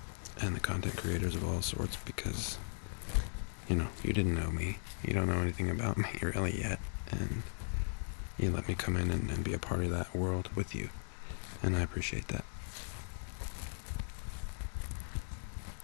and the content creators of all sorts, because, you didn't know me. You don't know anything about me really yet, and you let me come in and be a part of that world with you, and I appreciate that.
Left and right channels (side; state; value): right; silent; digital silence